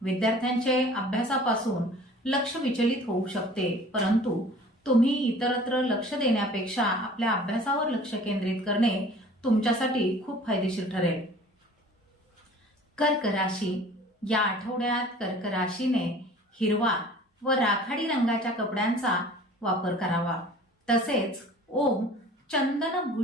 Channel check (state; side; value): normal; both; correlation 0.47